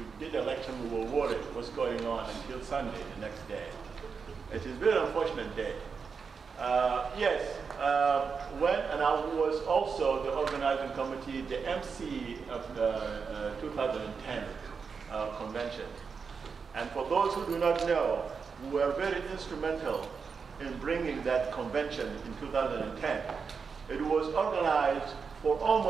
did the election, we were worried what's going on until Sunday, the next day. It is a very unfortunate day. Yes, and I was also the organizing committee, the MC of the 2010 convention. And for those who do not know, we were very instrumental in bringing that convention in 2010. It was organized for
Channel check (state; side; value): quieter; left; 5.6 dB